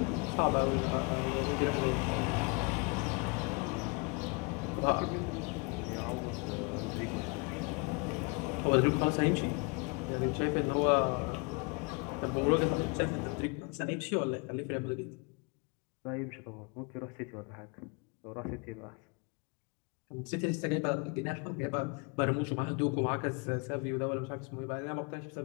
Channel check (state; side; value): quieter; right; 31.4 dB